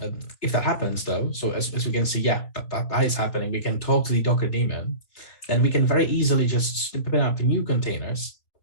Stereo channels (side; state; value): right; late; 3.5 ms